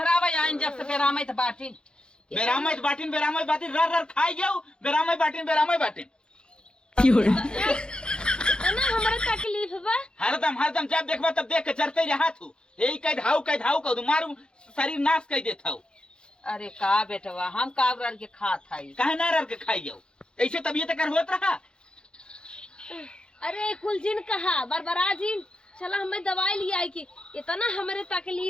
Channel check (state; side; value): late; right; 0.050 ms